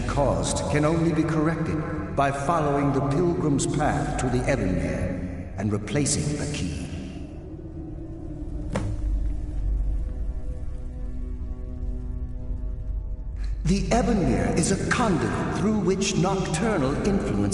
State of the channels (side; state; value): both; identical; correlation 1.00